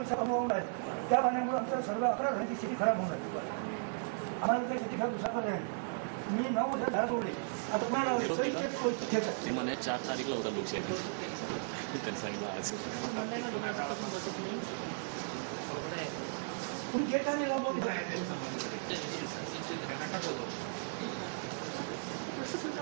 अनुभव आहे। त्या पाण्यामुळे आमच्या सर्व 11 घरांची स्थिती खराब होणार आहे। आम्हाला त्या स्थिती खराब दुसरा पर्याय नाही। मी 9 वर्ष झाड तोडले, आता पुन्हा ते म्हणे 4 तारीखला होता लोकशाही त्यांनी सांगितलं आज तुम्ही गेट आणि लावून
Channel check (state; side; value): silent; left; 54 dB below the other